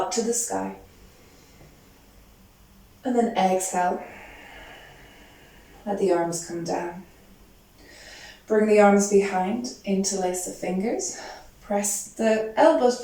to the sky. And then exhale. Let the arms come down. Bring the arms behind, interlace the fingers. Press the elbows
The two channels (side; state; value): both; identical; correlation 1.00